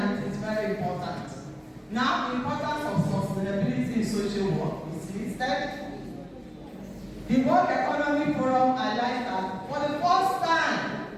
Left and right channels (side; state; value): both; identical; correlation 1.00